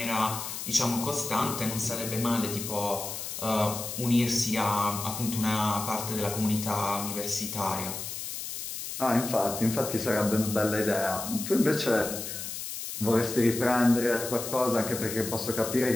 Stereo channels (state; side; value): noise; left; hiss, 7 dB below the sound